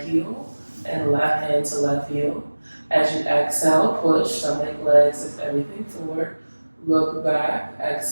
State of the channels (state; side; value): inverted; both; correlation -1.00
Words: heel and left hand to left heel. As you exhale, push, stomach, legs, lift everything forward. Look back,